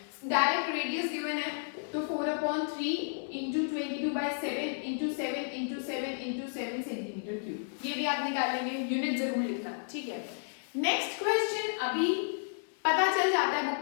डायरेक्ट रेडियस गिवन है, तो 4/3 into 22/7 into 7 into 7 into 7 centimetre cube, ये भी आप निकाल लेंगे, यूनिट जरूर लिखना। ठीक है, नेक्स्ट क्वेश्चन अभी पता चल जाता है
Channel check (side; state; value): right; silent; 56 dB below the other